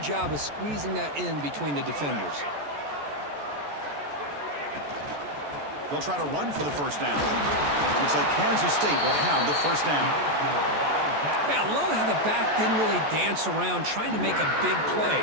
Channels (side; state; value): left; late; 14 ms